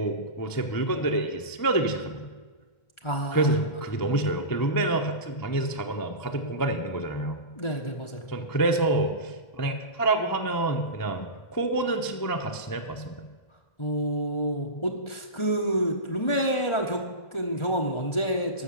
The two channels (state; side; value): late; right; 1.4 ms